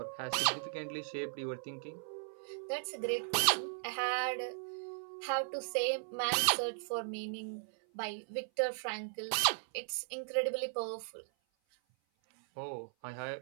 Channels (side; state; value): left; silent; 53 dB below the other